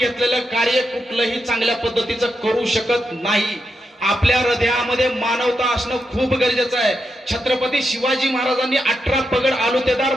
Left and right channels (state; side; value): normal; both; correlation 0.85